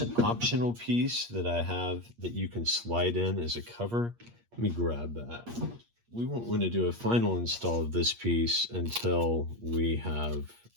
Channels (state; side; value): late; left; 8.5 ms